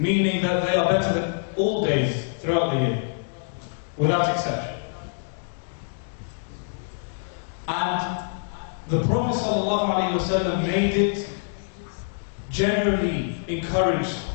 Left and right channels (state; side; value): silent; right; digital silence